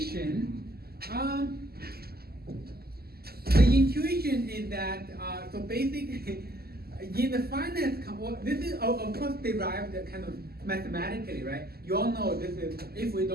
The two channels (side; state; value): left; late; 0.45 ms